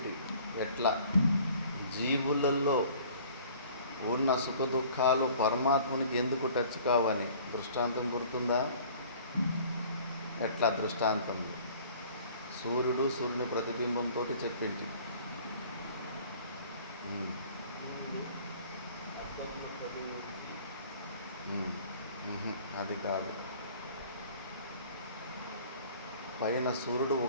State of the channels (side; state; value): both; inverted; correlation -0.50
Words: ఎట్లా జీవులలో ఉన్న సుఖ దుఃఖాలు పరమాత్మునికి ఎందుకు టచ్ కావని దృష్టాంతం గుర్తుందా? ఎట్లా దృష్టాంతం? సూర్యుని ప్రతిబింబంతో చెప్పింది. అది కాదు. పైన సూర్యుడు